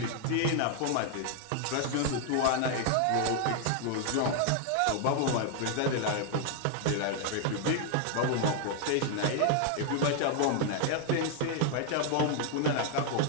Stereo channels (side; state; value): both; different; correlation 0.00